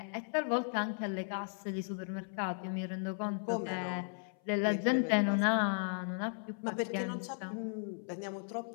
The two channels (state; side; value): silent; right; 54 dB below the other